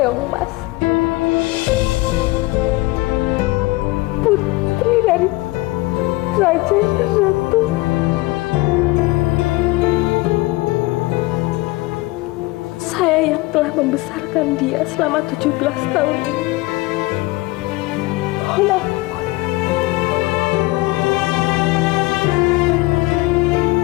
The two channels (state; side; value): quieter; right; 21.4 dB